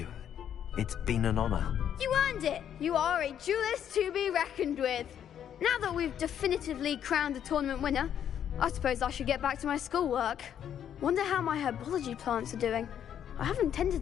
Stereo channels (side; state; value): right; quieter; 9.5 dB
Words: It's been an honor. You earned it. You are a duelist to be reckoned with. Now that we've definitively crowned the tournament winner, I suppose I should get back to my schoolwork. Wonder how my herbology plants are doing. I haven't